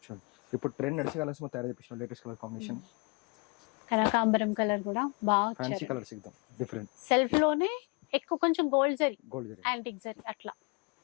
చూడండి ఇప్పుడు ట్రెండ్ నడిచే కలర్స్ మొత్తం తయారు చేపించిన లేటెస్ట్ కలర్ కాంబినేషన్. కనకాంబరం కలర్ కూడా బాగా ఫ్యాన్సీ కలర్స్ ఎక్దమ్ డిఫరెంట్. సెల్ఫ్ లోనే ఎక్కువ కొంచెం గోల్డ్ జరీ, యాంటిక్ జరీ అట్లా.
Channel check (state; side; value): quieter; right; 30.7 dB